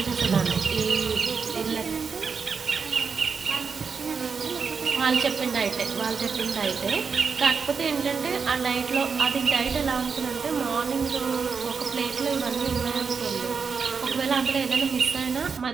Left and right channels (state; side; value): quieter; left; 5.6 dB